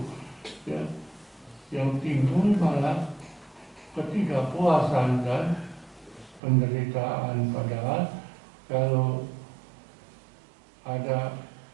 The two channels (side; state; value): left; drops out; at 6.4 s